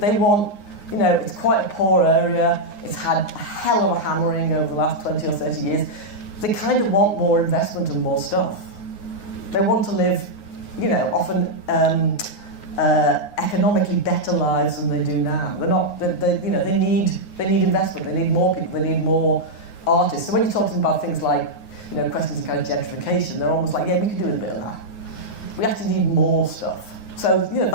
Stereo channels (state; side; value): late; right; 9.6 ms